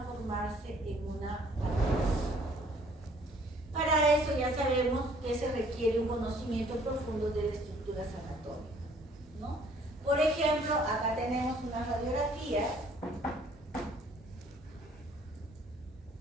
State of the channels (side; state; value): both; normal; correlation 0.59